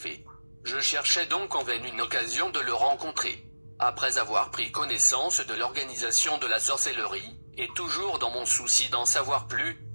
Je cherchais donc en vain une occasion de le rencontrer. Après avoir pris connaissance de l'organisation de la sorcellerie, et toujours dans mon souci d'en savoir plus,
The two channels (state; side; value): inverted; both; correlation -1.00